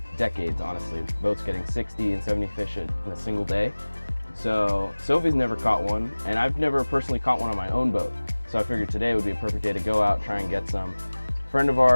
decades, honestly. Boats getting 60 and 70 fish in a single day. So Sophie's never caught one, and I've never personally caught one on my own boat. So I figured today would be a perfect day to go out, try and get some. A friend of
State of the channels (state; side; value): inverted; both; correlation -1.00